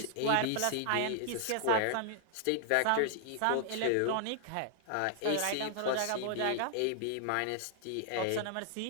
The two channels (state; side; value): different; both; correlation -0.01